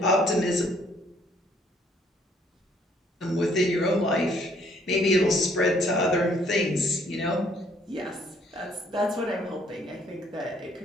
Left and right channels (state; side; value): normal; both; correlation 0.64